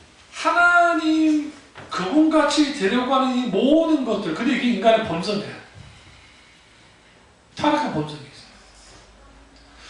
하나님 그분같이 되려고 이 모든 것들, 근데 이게 인간의 본성이에요. 타락한 본성이 있어요.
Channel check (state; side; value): identical; both; correlation 1.00